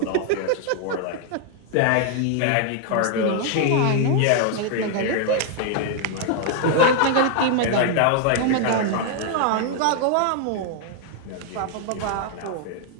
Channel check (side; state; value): both; different; correlation 0.00